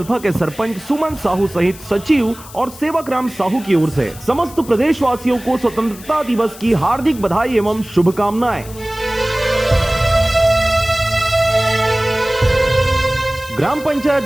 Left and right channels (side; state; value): left; noise; hiss, 18 dB below the sound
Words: के सरपंच सुमन साहू सहित सचिव और सेवक राम साहू की ओर से समस्त प्रदेशवासियों को स्वतंत्रता दिवस की हार्दिक बधाई एवं शुभकामनाएं। ग्राम